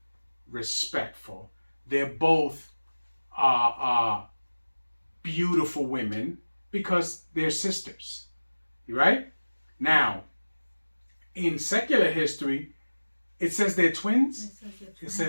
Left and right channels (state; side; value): inverted; both; correlation -1.00